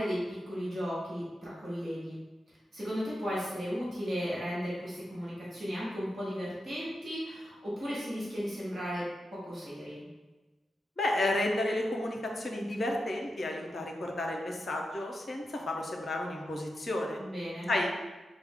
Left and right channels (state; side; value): normal; both; correlation 0.89